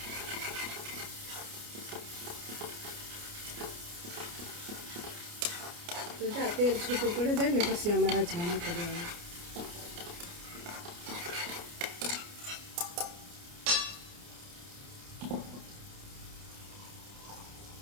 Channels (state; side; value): late; left; 29 ms